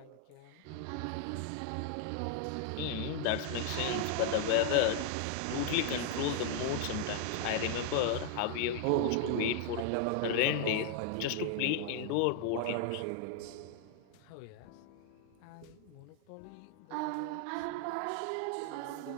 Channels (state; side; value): different; both; correlation 0.00